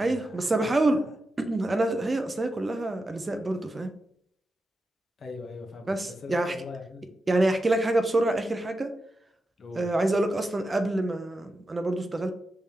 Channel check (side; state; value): both; normal; correlation 0.90